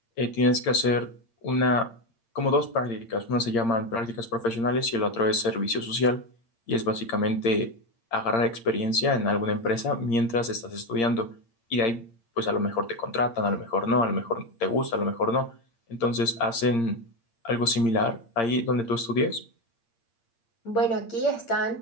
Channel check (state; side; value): late; right; 8.7 ms